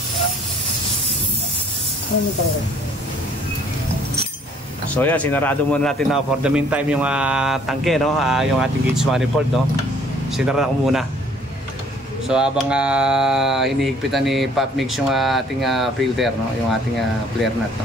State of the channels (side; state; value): both; normal; correlation 0.59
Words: So yan, sinarado muna natin na for the meantime yung tangke, no? Yung ating gauge manifold, no? Sinarado ko muna. So habang hinihigpitan ni Pop Mix yung ating filter, no? Yung ating flare nut, no?